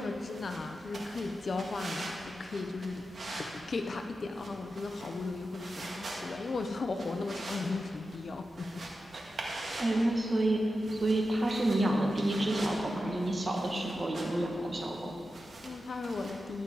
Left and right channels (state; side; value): normal; both; correlation 0.91